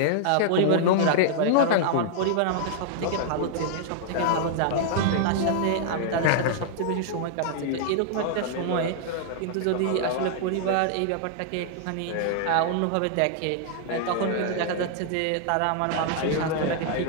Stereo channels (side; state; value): both; different; correlation -0.01